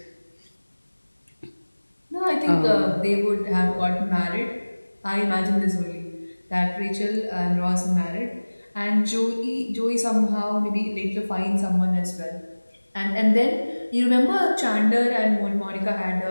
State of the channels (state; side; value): inverted; both; correlation -1.00